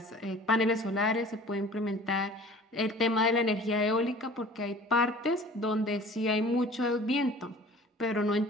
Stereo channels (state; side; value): normal; both; correlation 0.46